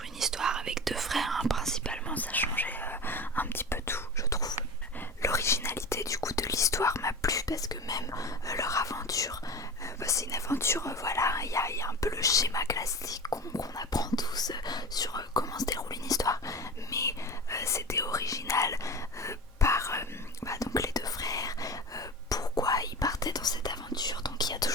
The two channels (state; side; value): normal; both; correlation 0.30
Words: une histoire avec deux frères, hein, principalement ça changeait un petit peu tout je trouve. L'originalité du coup de l'histoire m'a plu parce que même leur aventure, c'est une aventure, voilà, il y a un peu le schéma classique qu'on apprend tous sur comment se déroule une histoire, mais c'était original par donc les deux frères, pourquoi ils partaient dans cette aventure. Donc il y a